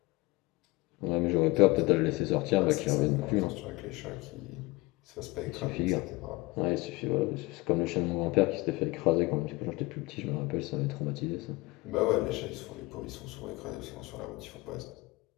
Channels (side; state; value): right; quieter; 22.3 dB